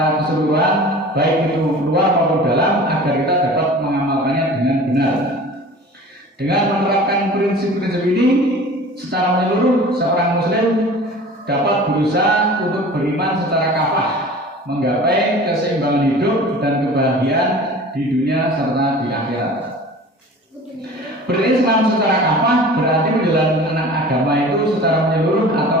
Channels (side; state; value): both; normal; correlation 0.41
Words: keseluruhan, baik itu luar maupun dalam, agar kita dapat mengamalkannya dengan benar. Dengan menerapkan prinsip-prinsip ini secara menyeluruh, seorang muslim dapat berusaha untuk beriman secara kafah, menggapai keseimbangan hidup dan kebahagiaan di dunia serta di akhirat. Berislam secara kafah berarti menjalankan agama itu secara menyeluruh